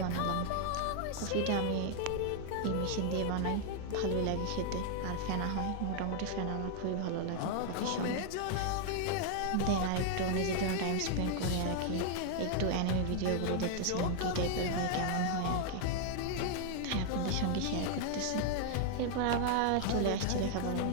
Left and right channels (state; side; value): different; both; correlation 0.00